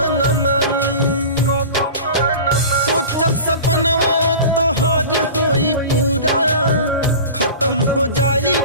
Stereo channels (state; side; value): inverted; both; correlation -0.35